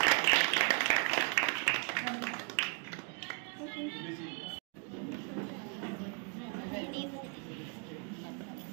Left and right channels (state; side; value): quieter; left; 39.4 dB